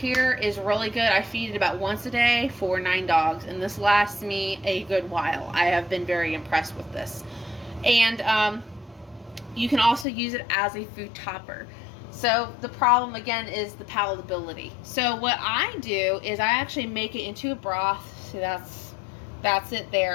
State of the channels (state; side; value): drops out; right; at 10.1 s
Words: is really good. I feed it about once a day for 9 dogs, and this lasts me a good while. I have been very impressed with this. And you can also use it as a food topper. So the problem, again, is the palatability. So what I do is I actually make it into a broth. So that's it